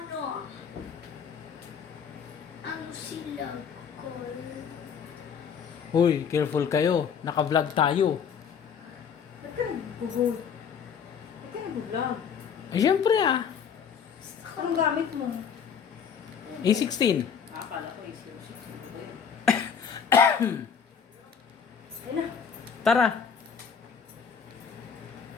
Ang silag ko. Uy, careful kayo. Naka-vlog tayo. Ba't ka nag-vlog? Ba't ka nag-vlog? Ay, syempre ah. Anong gamit mo? A16. Akala ko is 06. Ayun. Ayun na. Tara.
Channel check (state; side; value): quieter; right; 7.0 dB